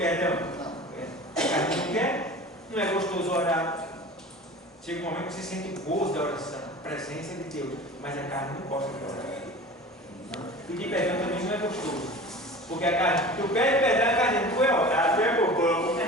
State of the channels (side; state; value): both; normal; correlation 0.37